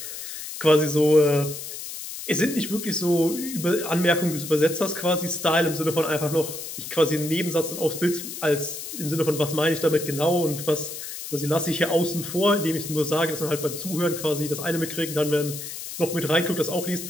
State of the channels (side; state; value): left; noise; hiss, 9 dB below the sound